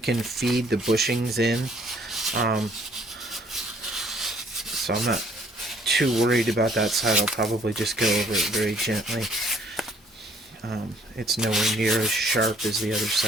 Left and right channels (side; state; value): both; normal; correlation 0.61